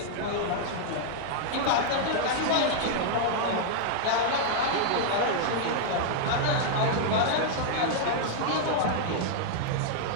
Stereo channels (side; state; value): both; different; correlation -0.01